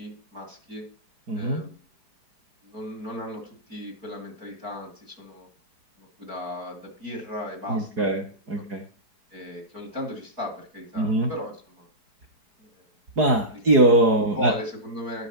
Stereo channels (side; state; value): left; late; 4.8 ms